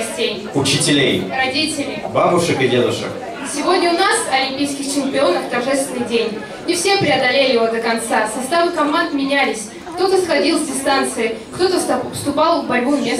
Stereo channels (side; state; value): both; identical; correlation 1.00